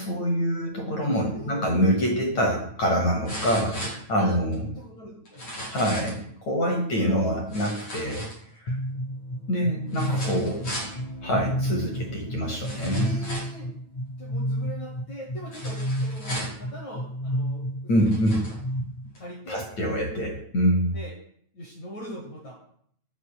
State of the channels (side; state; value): right; late; 9.1 ms